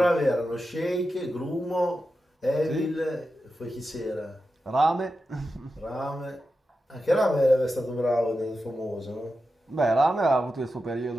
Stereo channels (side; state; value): both; normal; correlation 0.90